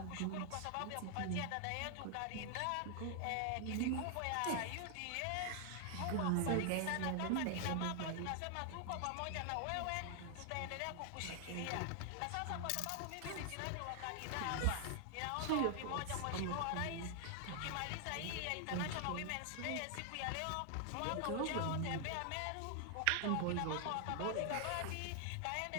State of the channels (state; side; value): different; both; correlation 0.00